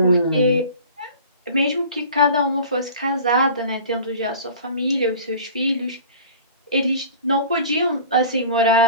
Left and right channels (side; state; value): both; inverted; correlation -0.42